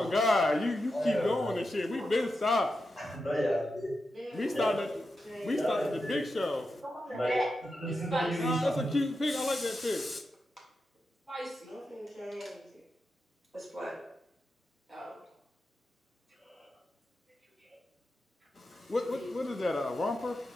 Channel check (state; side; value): normal; both; correlation 0.89